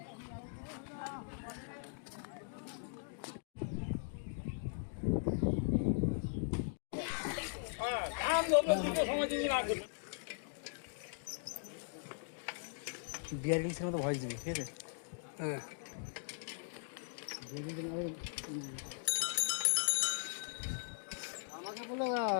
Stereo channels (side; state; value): right; silent; digital silence